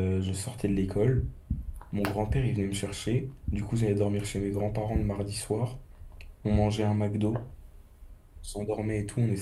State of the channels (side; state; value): both; identical; correlation 1.00